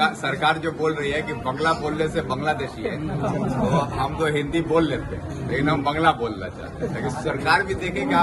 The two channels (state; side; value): identical; both; correlation 1.00